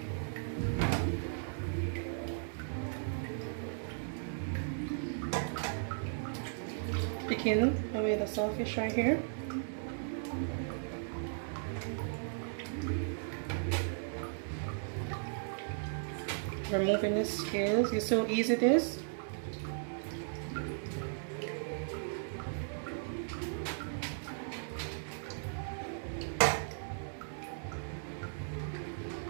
Picking away the saltfish right here. Removing the scales. You see how easy it is?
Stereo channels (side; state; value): left; silent; 53 dB below the other